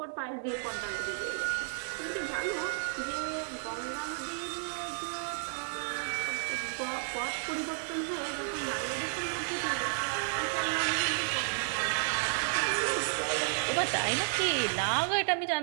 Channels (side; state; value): left; silent; digital silence